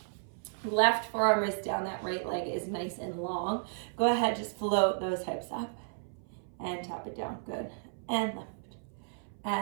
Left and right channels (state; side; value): silent; left; 56 dB below the other